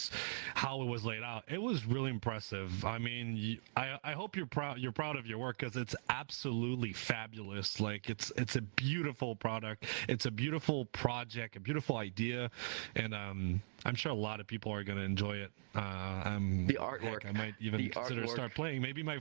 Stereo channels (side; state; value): left; silent; digital silence